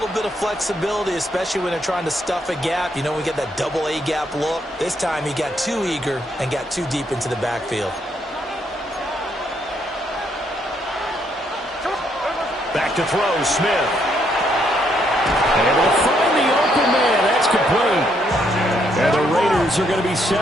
bit of flexibility, especially when they're trying to stuff a gap. You know, we get that double A gap look. This time he got too eager and got too deep into the backfield. Back to throw, Smith. And they'll find the open man. That's complete. And the Raiders are going to be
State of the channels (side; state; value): both; normal; correlation 0.73